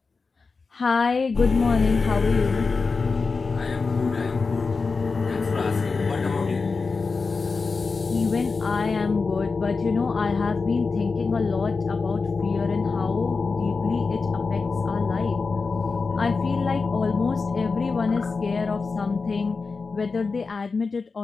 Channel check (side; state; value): right; quieter; 4.4 dB